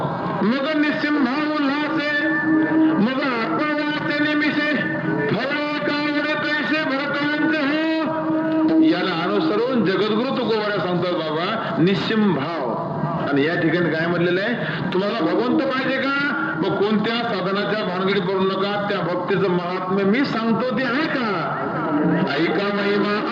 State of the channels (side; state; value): both; identical; correlation 1.00